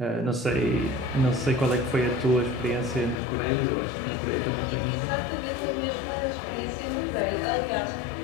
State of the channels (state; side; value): drops out; right; at 3.2 s